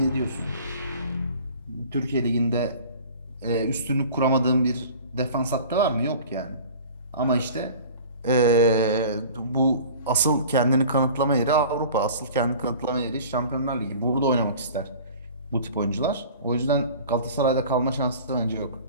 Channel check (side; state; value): both; inverted; correlation -0.43